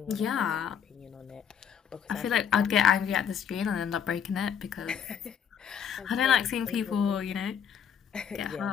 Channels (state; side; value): quieter; right; 7.9 dB